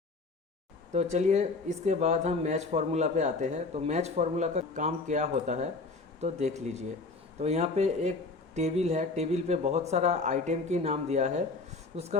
तो चलिए इसके बाद हम मैच फार्मूला पे आते हैं। तो मैच फार्मूला का काम क्या होता है तो देख लीजिए। तो यहाँ पे एक टेबल है, टेबल पे बहुत सारा आइटम की नाम दिया है, उसका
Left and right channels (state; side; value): quieter; right; 3.8 dB